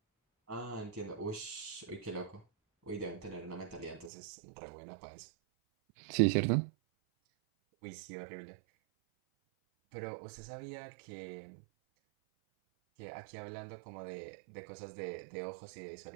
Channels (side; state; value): left; drops out; at 4.1 s